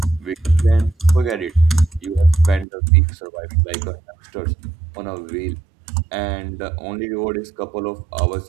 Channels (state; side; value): drops out; left; at 2.7 s